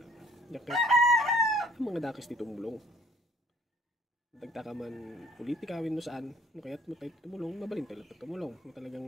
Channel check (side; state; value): both; normal; correlation 0.58